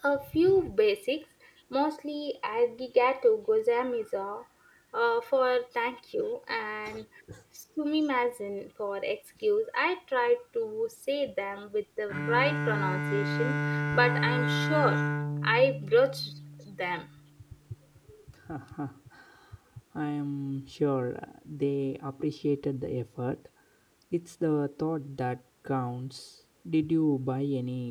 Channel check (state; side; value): identical; both; correlation 1.00